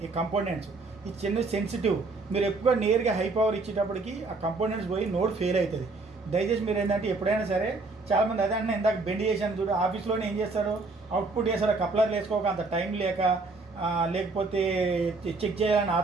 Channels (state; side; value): quieter; left; 3.6 dB